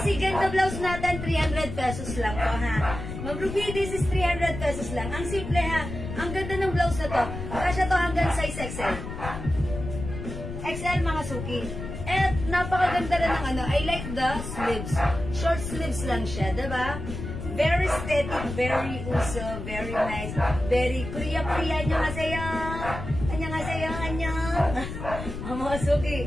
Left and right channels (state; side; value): noise; left; rumble, 8 dB below the sound